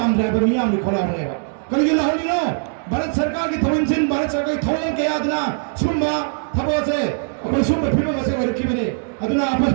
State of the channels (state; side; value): silent; left; digital silence